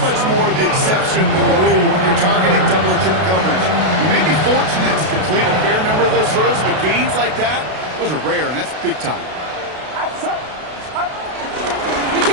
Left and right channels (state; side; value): late; left; 32 ms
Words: much more the exception than the rule when you're targeting double or triple coverage. You may be fortunate to complete a fair number of those throws, but gains like that, those are rare, and that's big time.